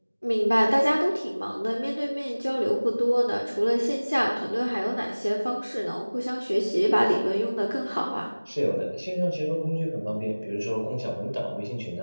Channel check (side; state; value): both; inverted; correlation -1.00